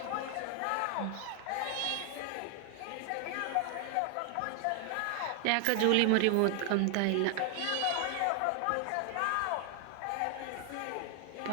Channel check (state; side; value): different; both; correlation 0.00